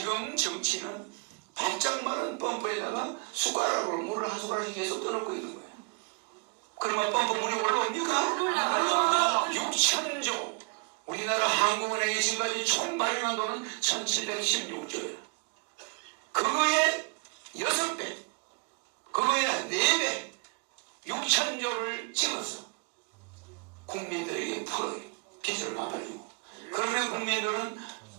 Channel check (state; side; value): quieter; left; 35.3 dB